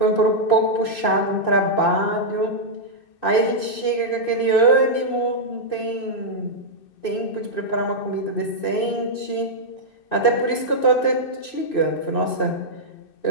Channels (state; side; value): late; right; 2.6 ms